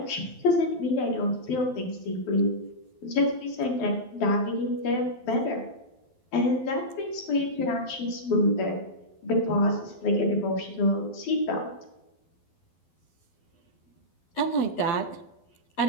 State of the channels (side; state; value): right; late; 12 ms